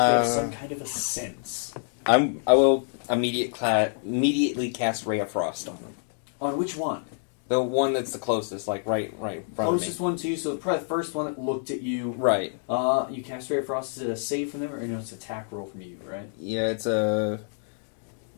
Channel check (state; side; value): silent; right; digital silence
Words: some kind of a sense. I will immediately cast Ray of Frost on them. On which one? The one that's the closest, like right in front Closest of me. one to you, so probably the first one that looked at you. Right. You cast Ray of Frost. Is it a save from them, or no? It's an attack roll from you, right? Yeah, it's a.